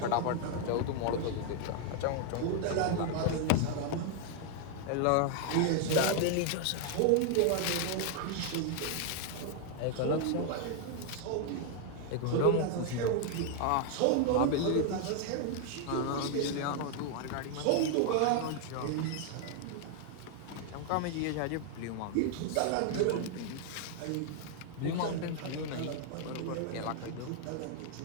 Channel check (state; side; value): different; both; correlation 0.00